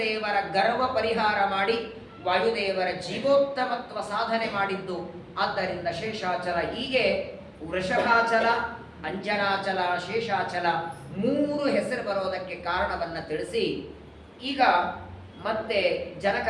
ಗರ್ವ ಪರಿಹಾರ ಮಾಡಿ ವಾಯುದೇವರ ಜೀವೋತ್ತಮತ್ವ ಸಾಧನೆ ಮಾಡಿದ್ದು. ಆದ್ದರಿಂದ ಶೇಷಾಚಲ. ಹೀಗೆ ವೃಷಭಾಚಲ, ಅಂಜನಾಚಲ, ಶೇಷಾಚಲ 3 ಹೆಸರು ಬರೋದಕ್ಕೆ ಕಾರಣವನ್ನು ತಿಳಿಸಿ ಈಗ ಮತ್ತೆ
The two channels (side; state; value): both; identical; correlation 1.00